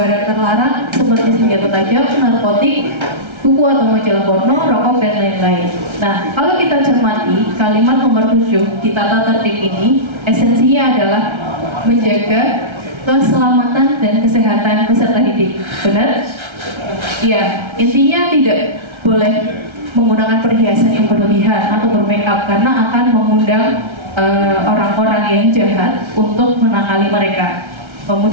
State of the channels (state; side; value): late; left; 1.3 ms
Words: terlarang seperti senjata tajam, narkotik, buku atau majalah porno, rokok, dan lain-lain. Nah, kalau kita cermati kalimat nomor 7 di tata tertib ini, esensinya adalah menjaga keselamatan dan kesehatan peserta didik. Benar? Iya, intinya tidak boleh menggunakan perhiasan yang berlebihan atau bermake up karena akan mengundang orang-orang yang jahat untuk menakali mereka.